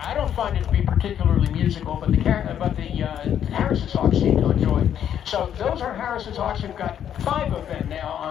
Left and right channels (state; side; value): quieter; right; 9.6 dB